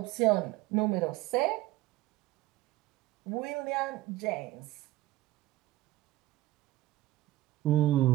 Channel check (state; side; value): quieter; left; 16.3 dB